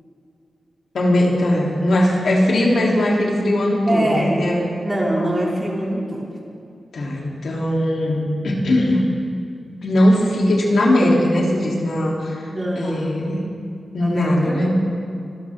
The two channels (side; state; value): both; normal; correlation 0.93